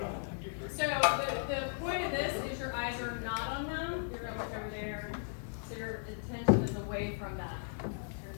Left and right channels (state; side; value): silent; right; digital silence